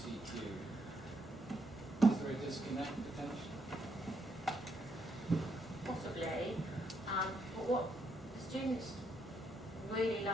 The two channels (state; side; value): normal; both; correlation 0.76